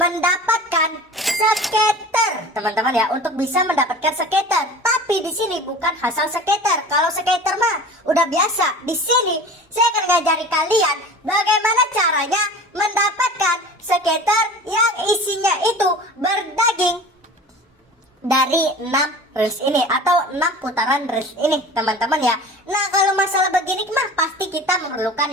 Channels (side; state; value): both; normal; correlation 0.39